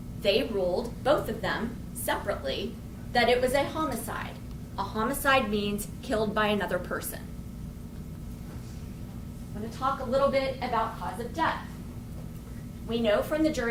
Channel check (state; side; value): identical; both; correlation 1.00